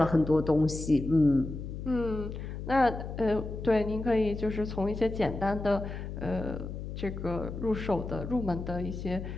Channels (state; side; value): noise; left; hum, 7 dB below the sound